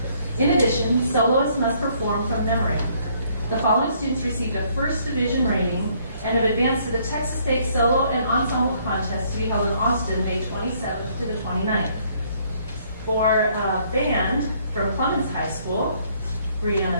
In addition, soloists must perform from memory. The following students received a first division rating and have advanced to the Texas State Solo and Ensemble Contest to be held in Austin, May 27th to the 29th. For band from Clemens High School,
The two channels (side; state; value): both; inverted; correlation -0.65